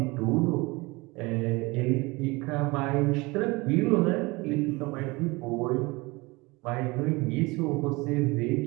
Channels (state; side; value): quieter; left; 24.0 dB